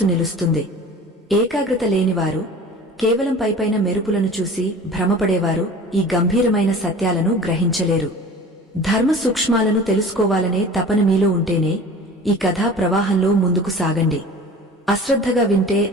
నిలుస్తుంది. ఏకాగ్రత లేనివారు, కేవలం పైపైన మెరుపులను చూసి భ్రమపడేవారు ఈ గంభీరమైన సత్యాలను గ్రహించలేరు. ధర్మ సూక్ష్మాలను తెలుసుకోవాలనే తపన మీలో ఉంటేనే ఈ కథా ప్రవాహంలో ముందుకు సాగండి. అశ్రద్ధగా వింటే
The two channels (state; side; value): normal; both; correlation 0.41